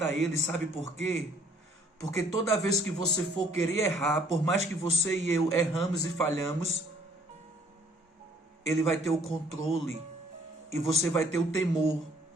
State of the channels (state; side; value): normal; both; correlation 0.61